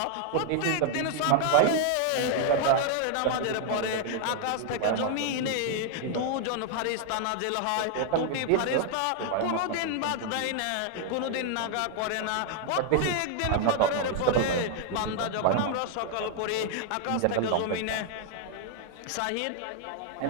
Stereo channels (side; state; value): both; different; correlation 0.00